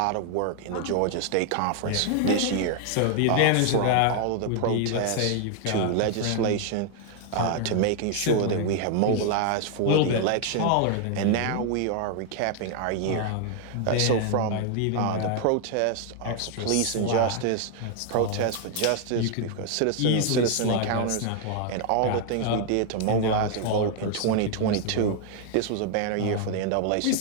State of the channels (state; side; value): different; both; correlation 0.00